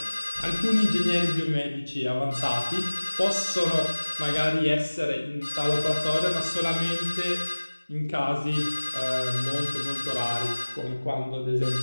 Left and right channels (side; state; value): both; inverted; correlation -1.00